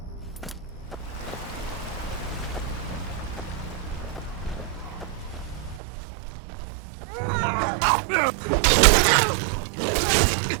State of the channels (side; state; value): left; drops out; at 5.8 s